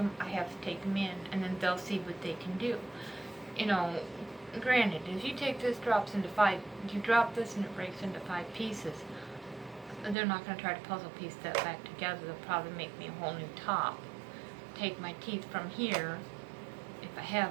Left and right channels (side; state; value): left; drops out; at 10.2 s